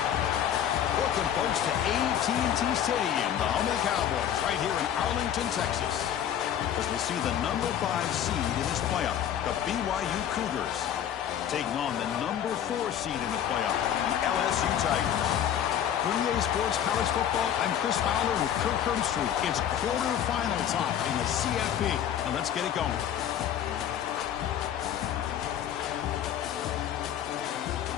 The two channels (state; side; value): quieter; right; 9.9 dB